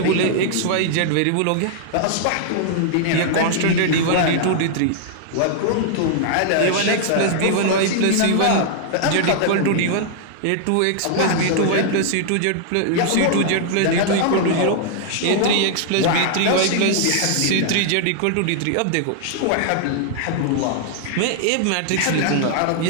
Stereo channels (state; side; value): different; both; correlation -0.01